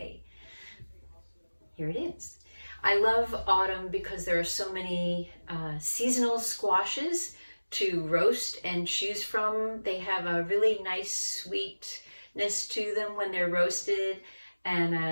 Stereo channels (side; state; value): both; inverted; correlation -1.00